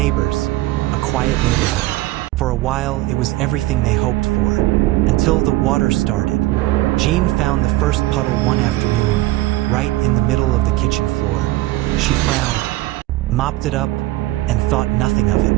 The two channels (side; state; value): left; quieter; 17.4 dB